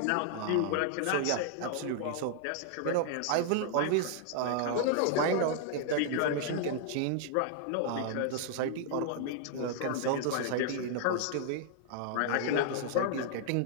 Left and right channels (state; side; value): different; both; correlation -0.01